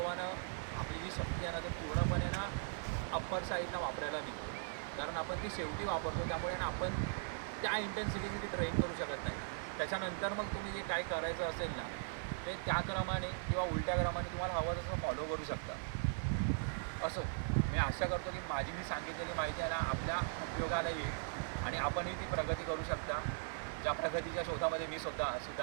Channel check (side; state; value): left; silent; digital silence